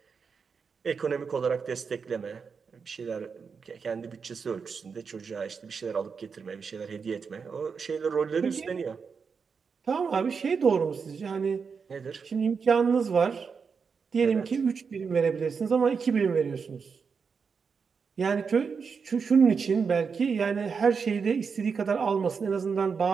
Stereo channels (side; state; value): left; quieter; 5.7 dB